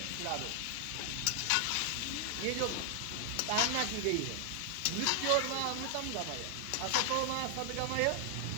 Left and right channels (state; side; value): different; both; correlation -0.01